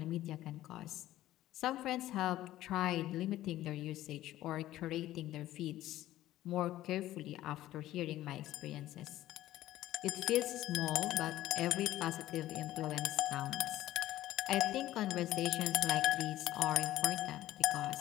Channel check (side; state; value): right; quieter; 14.6 dB